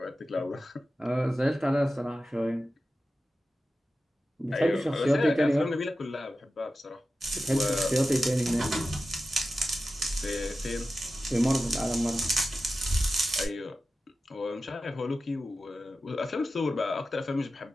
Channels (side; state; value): both; normal; correlation 0.93